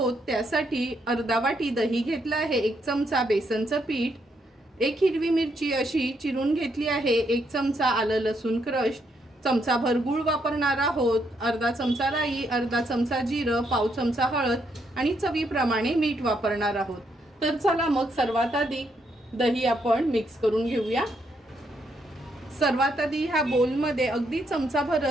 त्यासाठी अर्धा वाटी दही घेतला आहे, 1 चमचा बेसनचं पीठ, 1 हिरवी मिरची अशी चिरून घेतली आहे, 1 चमचा आलं लसूण क्रश, चमचाभर गूळ वापरणार आहोत, अर्धा चमचा राई, अर्धा चमचा जिरं, पाव चमचा हळद आणि चवीप्रमाणे मीठ वापरणार आहोत. तर चला मग सर्वात आधी दही आपण मिक्स करून घेऊया. सर्वात आधी ह्या बोलमध्ये अगदी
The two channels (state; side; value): normal; both; correlation 0.76